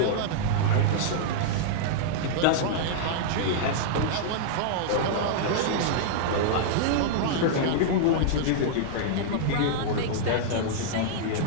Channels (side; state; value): both; different; correlation -0.02